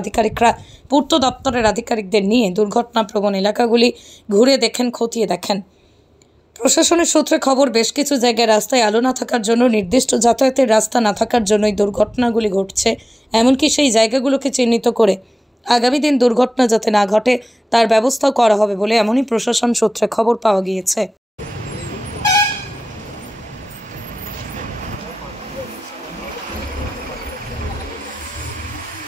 আধিকারিকরা পূর্ত দপ্তরের আধিকারিকদের নিয়ে দুর্ঘটনাপ্রবণ এলাকাগুলি ঘুরে দেখেন, খতিয়ে দেখেন। প্রশাসনের সূত্রে খবর, বেশ কিছু জায়গায় রাস্তায় আলো না থাকার জন্য, নির্দিষ্ট যাতায়াতের রাস্তা না থাকার জন্যই দুর্ঘটনাগুলি ঘটছে। এমনকি সেই জায়গাগুলোকে চিহ্নিত করে আগামী দিন দুর্ঘটনা যাতে না ঘটে তার ব্যবস্থাও করা হবে বলে এমনই প্রশাসন সূত্রে খবর পাওয়া গিয়েছে।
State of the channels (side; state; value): both; normal; correlation 0.97